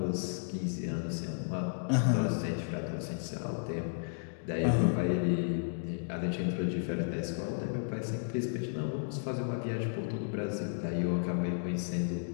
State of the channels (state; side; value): silent; right; digital silence